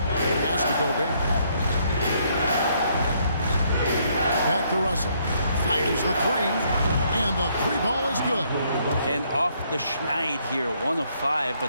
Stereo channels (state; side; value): inverted; both; correlation -0.70